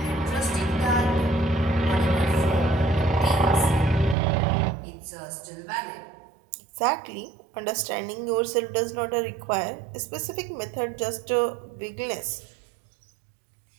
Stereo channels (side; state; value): left; drops out; at 4.2 s